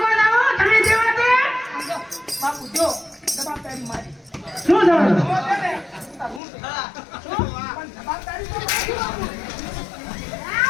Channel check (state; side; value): drops out; right; at 6.4 s